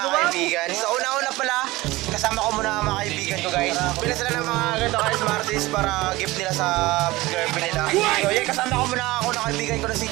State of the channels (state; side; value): quieter; left; 19.6 dB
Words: kaibigan. So una-una pala, kasama ko muna mga kaibigan ko guys. Pila sila ng mga ganito guys, Martis para gift nila sa girlfriend nila. So yeah, kasama ko muna ako na kaibigan ko na si